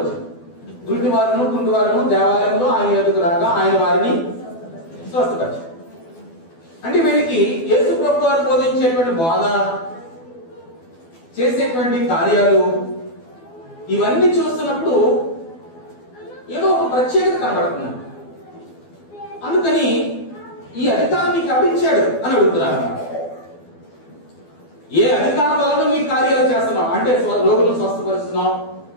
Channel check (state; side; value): late; right; 12 ms